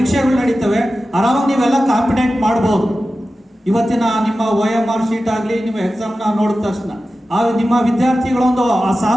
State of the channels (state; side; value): normal; both; correlation 0.94